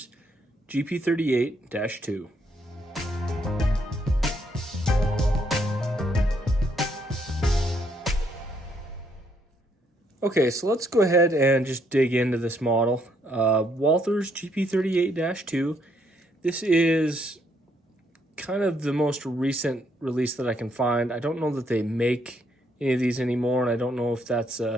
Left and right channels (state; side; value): normal; both; correlation 0.72